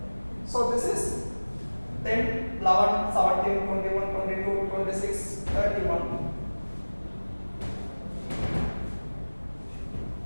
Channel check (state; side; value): inverted; both; correlation -1.00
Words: So this is 10, 11, 17, 21, 22, 26, 31.